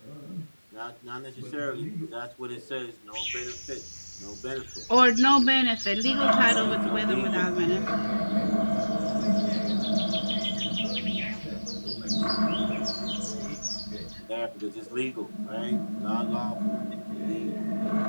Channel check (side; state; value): both; inverted; correlation -1.00